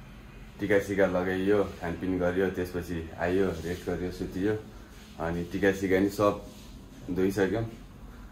टिका सिका लगाइयो खानपिन गरियो त्यसपछि आइयो रेस्ट गरियो सुतियो अनि टिका सिका नि सब धोइसक्यौँ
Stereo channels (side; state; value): both; identical; correlation 1.00